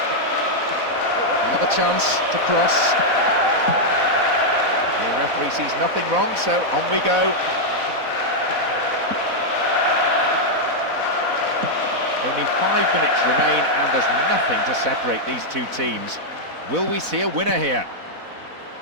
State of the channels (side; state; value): left; late; 4.1 ms